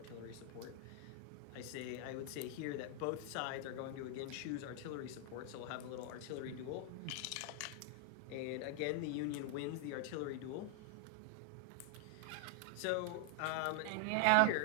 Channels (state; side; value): different; both; correlation 0.00